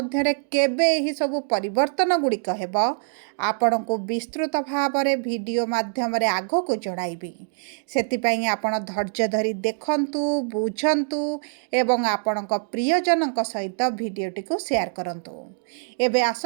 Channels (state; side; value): silent; left; digital silence